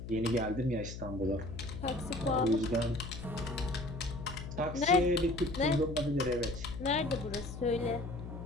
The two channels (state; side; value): noise; left; hum, 9 dB below the sound